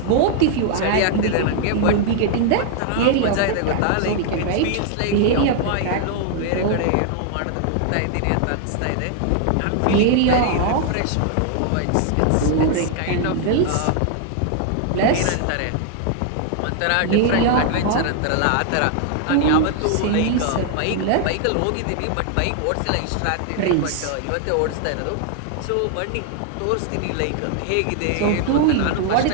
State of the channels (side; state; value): both; different; correlation 0.00